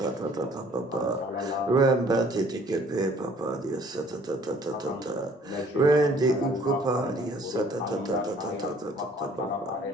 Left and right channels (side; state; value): both; normal; correlation 0.57